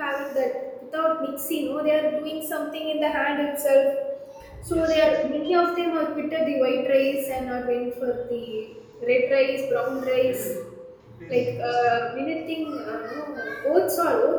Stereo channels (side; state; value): both; identical; correlation 1.00